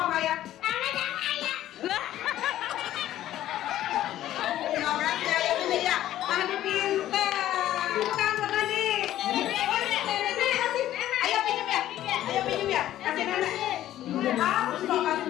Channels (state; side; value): quieter; right; 13.1 dB